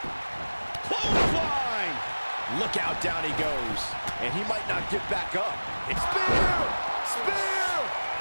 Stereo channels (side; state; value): both; inverted; correlation -1.00